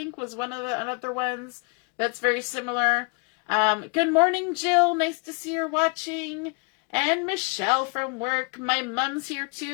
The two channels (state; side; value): quieter; right; 33.7 dB